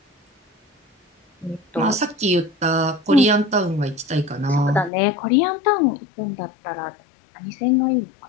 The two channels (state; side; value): drops out; right; at 4.9 s